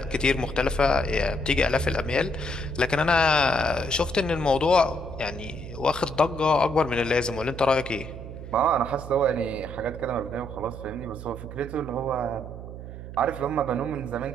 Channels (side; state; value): right; noise; hum, 11 dB below the sound